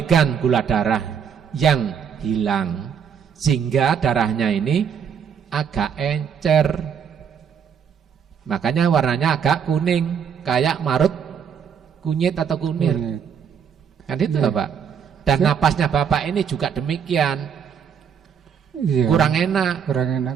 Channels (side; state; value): left; quieter; 7.4 dB